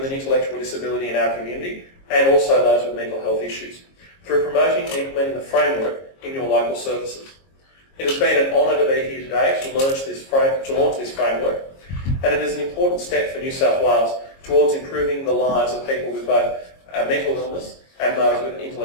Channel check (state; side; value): late; right; 22 ms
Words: an intellectual disability in our community and also those with mental health issues through promoting and implementing the framework in your local services. It has been an honour to be here today to launch this framework, and it is an important step for New South Wales towards improving the lives of people with both mental illness and those with